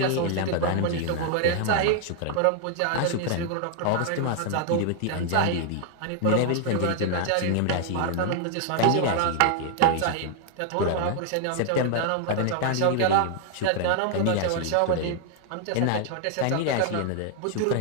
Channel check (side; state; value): both; different; correlation 0.00